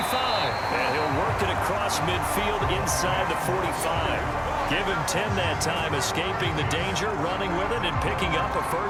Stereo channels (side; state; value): both; identical; correlation 1.00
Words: And he'll work it across midfield inside the 45. Give him 10 that time, escaping the danger, running with it, and picking up a